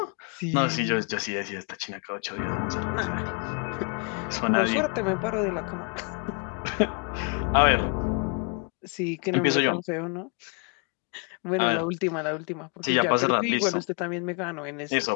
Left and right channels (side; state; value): right; quieter; 38.7 dB